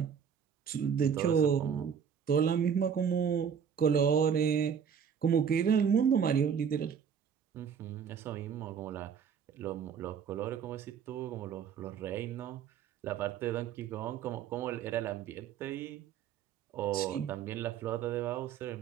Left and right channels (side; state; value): left; quieter; 7.5 dB